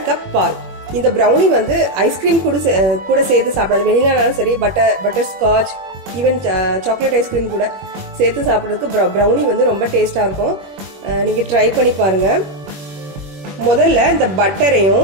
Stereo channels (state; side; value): late; left; 21 ms